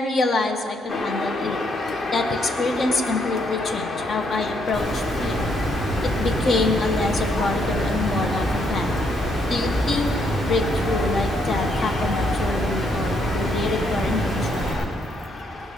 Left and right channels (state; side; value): normal; both; correlation 0.73